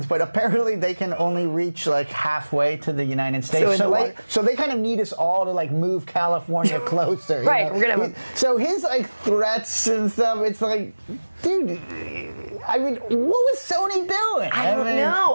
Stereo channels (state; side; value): inverted; both; correlation -1.00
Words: but apparently they can only reach like halfway to the United States. So they kind of need us all to like move California closer. Right. So his like threats and stuff, it's like, dude, I mean, what was Sony doing?